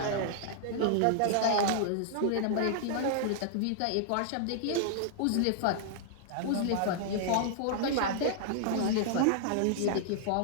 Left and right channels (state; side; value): different; both; correlation -0.01